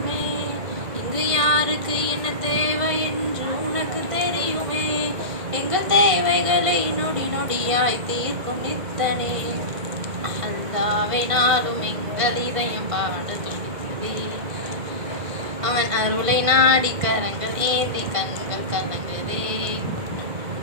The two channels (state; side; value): late; left; 1.6 ms